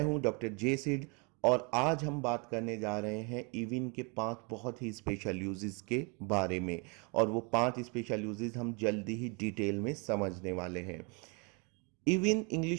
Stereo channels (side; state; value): left; quieter; 33.0 dB